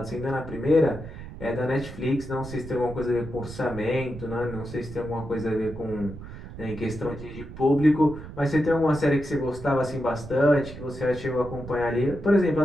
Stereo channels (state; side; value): noise; right; rumble, 13 dB below the sound